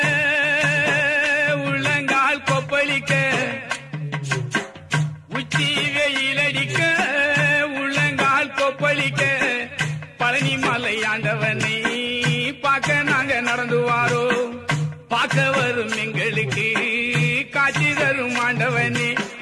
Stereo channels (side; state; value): both; identical; correlation 1.00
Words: உள்ளங்கால் கொப்பளிக்க, உச்சி வெயிலடிக்க உள்ளங்கால் கொப்பளிக்க, பழனி மலை ஆண்டவனை பார்க்க நாங்க நடந்து வாரோ. பார்க்க வரும் எங்களுக்கு காட்சி தரும் ஆண்டவனே,